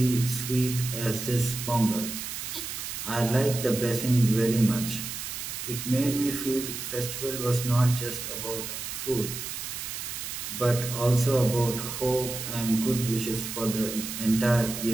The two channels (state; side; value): noise; right; hiss, 6 dB below the sound